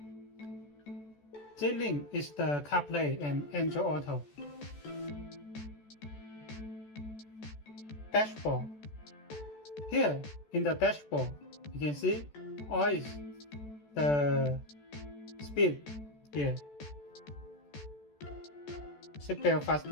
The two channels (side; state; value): right; late; 14 ms